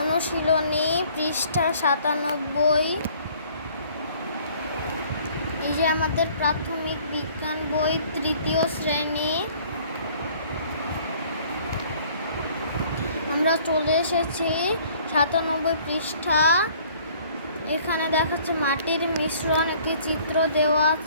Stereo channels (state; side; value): inverted; both; correlation -0.56